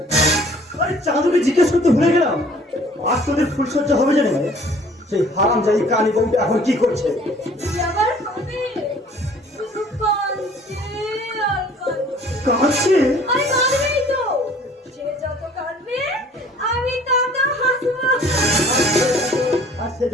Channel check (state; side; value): normal; both; correlation 0.54